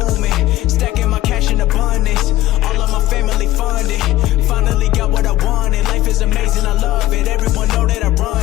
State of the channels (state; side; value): quieter; right; 15.3 dB